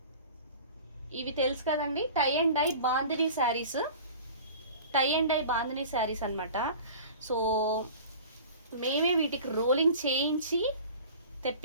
ఇవి తెలుసు కదండి, tie and dye bandhani saris, tie and dye bandhani saris అనమాట. సో మేమే వీటికి రోలింగ్ చేయించి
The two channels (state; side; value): inverted; both; correlation -0.40